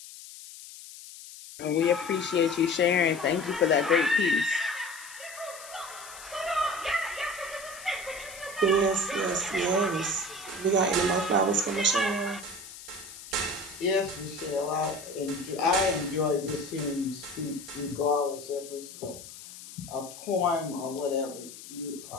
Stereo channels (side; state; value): left; noise; hiss, 15 dB below the sound